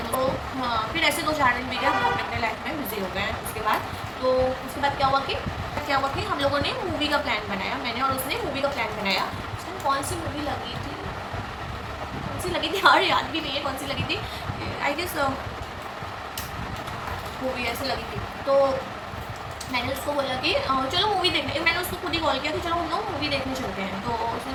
तो फिर ऐसे 2-4 दिन बीते, हम लोग अपने लाइफ में बिजी हो गए हैं उसके बाद। तो उसके बाद क्या हुआ कि हम लोगों ने मूवी का प्लान बनाया, मैंने और उसने मूवी का प्लान बनाया। उस टाइम कौन सी मूवी लगी थी, कौन सी लगी थी यार याद भी नहीं है कौन सी लगी थी। आई गेस मूवी ऐसे लगी थी। तो मैंने उसको बोला कि चलो मूवी देखने, मैंने उसको खुद ही कॉल किया कि चलो हम लोग मूवी देखने चलते हैं। तो उसने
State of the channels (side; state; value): both; identical; correlation 1.00